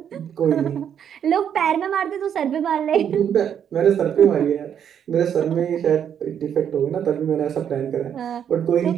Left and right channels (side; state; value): left; quieter; 8.7 dB